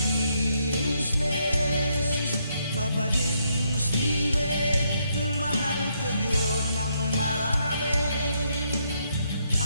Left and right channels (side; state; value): both; inverted; correlation -0.75